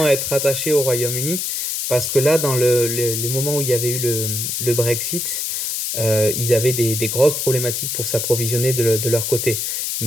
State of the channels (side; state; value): left; noise; hiss, 2 dB below the sound